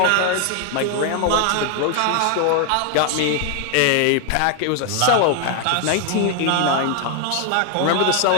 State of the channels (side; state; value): both; different; correlation 0.01